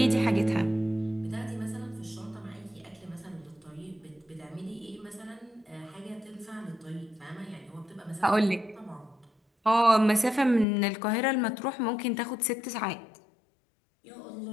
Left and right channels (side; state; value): right; drops out; at 10.7 s